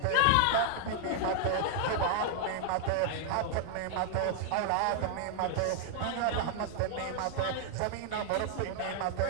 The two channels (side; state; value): both; different; correlation 0.00